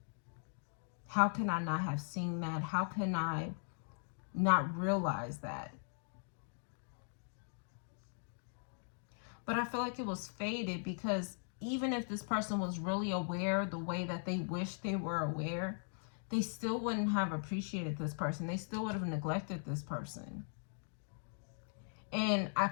How can I not have seen that? How can I not realize that? But I feel like it was faded, because even if this person was really aware the way that they wish they were aware, they still wouldn't have appreciated this person. They still would have neglected this person. And I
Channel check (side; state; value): right; silent; digital silence